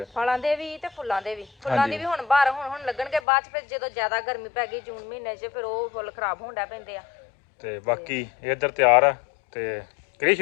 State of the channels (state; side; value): drops out; right; at 3.2 s